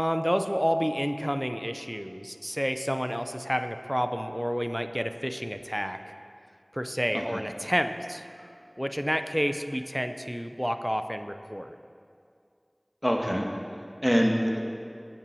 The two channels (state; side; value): identical; both; correlation 1.00